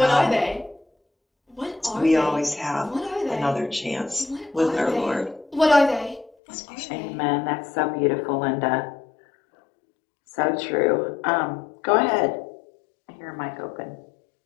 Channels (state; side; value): drops out; right; at 6.4 s